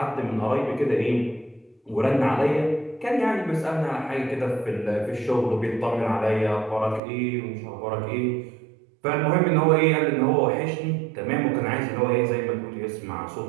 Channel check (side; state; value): left; drops out; at 7.0 s